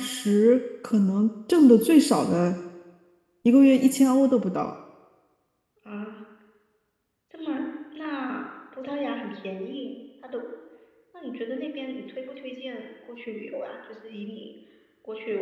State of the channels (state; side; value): identical; both; correlation 1.00